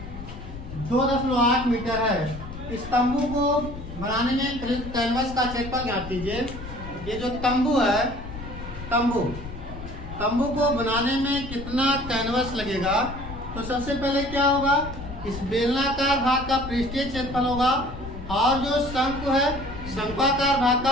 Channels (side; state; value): left; noise; rumble, 11 dB below the sound